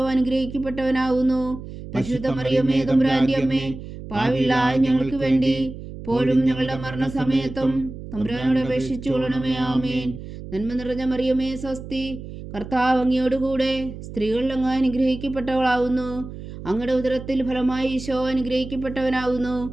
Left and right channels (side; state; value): right; noise; hum, 12 dB below the sound